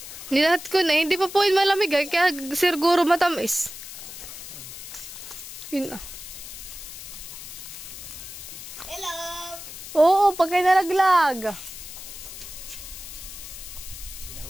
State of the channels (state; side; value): noise; left; hiss, 12 dB below the sound